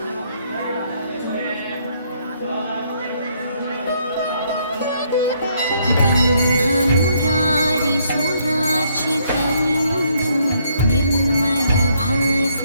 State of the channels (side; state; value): both; inverted; correlation -0.70